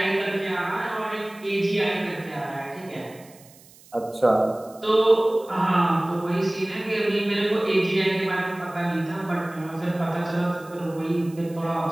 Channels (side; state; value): right; noise; hiss, 24 dB below the sound